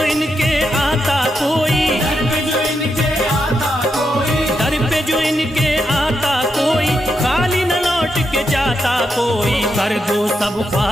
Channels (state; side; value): normal; both; correlation 0.83